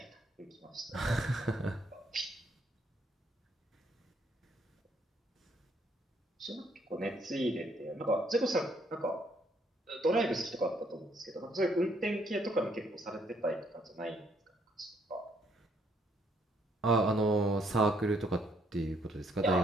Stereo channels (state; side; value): normal; both; correlation 0.69